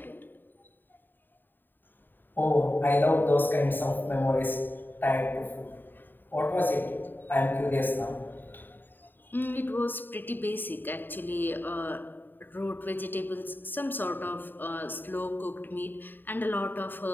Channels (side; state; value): right; late; 0.092 ms